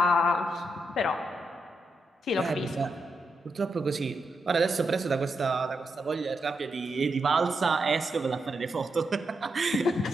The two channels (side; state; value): both; normal; correlation 0.84